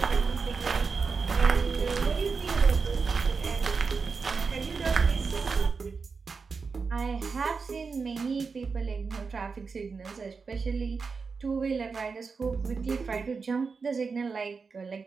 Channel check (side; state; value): left; quieter; 4.9 dB